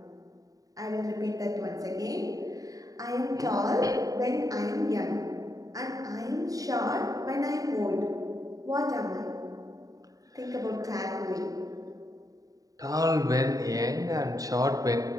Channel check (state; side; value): late; left; 0.17 ms